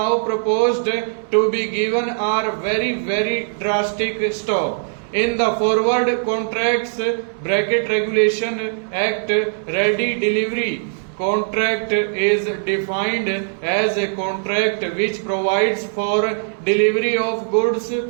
proposed to be given are very drastic. Stop. In the Forward Contracts Regulation Act, ready delivery contract is defined as a contract which provides for delivery of goods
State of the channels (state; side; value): silent; left; 64 dB below the other